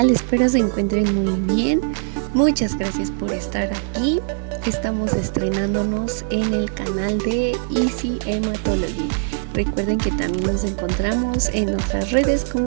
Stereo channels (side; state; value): left; silent; digital silence